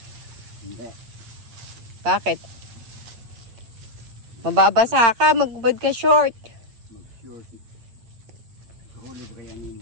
Hindi. Bakit? Mababasa ka, magbubad ka short. Mag-short. Kahuli ba kaya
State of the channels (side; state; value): left; late; 8.7 ms